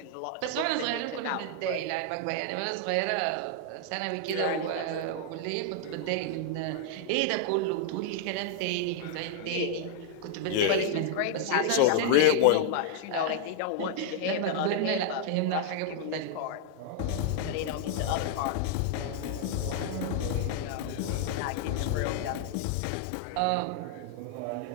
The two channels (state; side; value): different; both; correlation -0.01